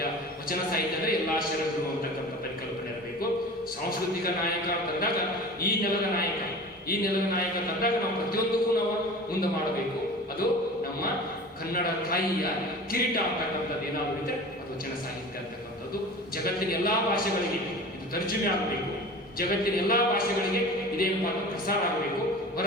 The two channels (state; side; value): normal; both; correlation 0.37